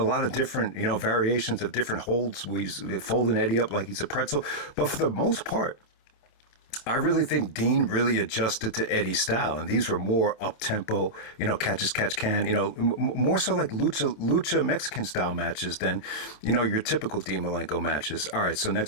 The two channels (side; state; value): right; late; 27 ms